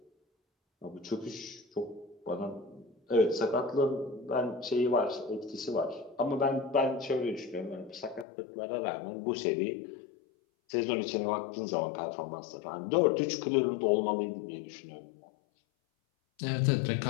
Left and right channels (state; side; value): drops out; right; at 8.2 s